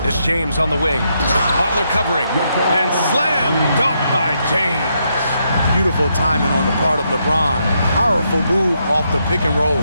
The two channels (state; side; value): inverted; both; correlation -0.79